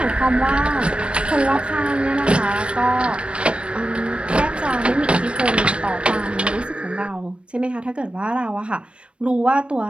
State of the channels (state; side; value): late; left; 0.058 ms